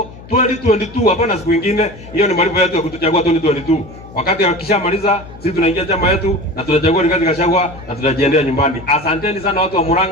2022, hapana siku nyingine. Hiyo ni malipo yetu ya kutuchagua 2022. Wakati wakishamaliza sisi tunaingia chama yetu na tunachagua Rigathi Gachagua na tunajiendea nyumbani. Asanteni sana watu wa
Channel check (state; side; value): noise; left; hum, 18 dB below the sound